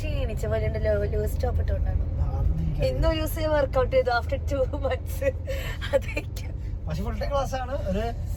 പോലെ ഉണ്ടല്ലോ. ലൂസ് ടോപ്പ് ഇട്ടോണ്ടാണ് ഇന്നൊരു ദിവസം വർക്ക്ഔട്ട് ചെയ്തു. ആഫ്റ്റർ 2 months അതൊക്കെ. പക്ഷെ ഫുൾ ടൈം ക്ലാസ് ആണ്. ഒരു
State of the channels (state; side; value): identical; both; correlation 1.00